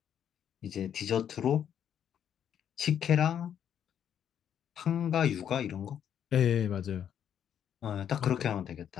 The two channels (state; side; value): quieter; right; 9.2 dB